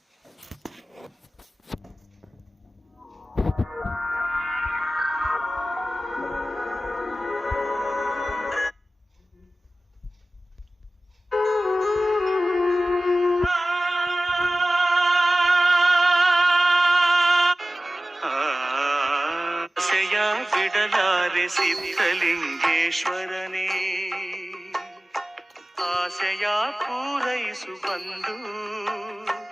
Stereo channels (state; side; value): normal; both; correlation 0.96